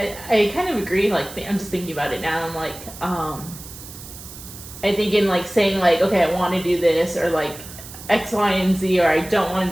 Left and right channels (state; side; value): noise; right; hiss, 15 dB below the sound